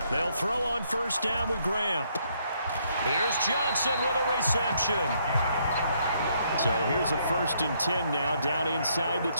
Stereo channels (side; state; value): both; inverted; correlation -0.71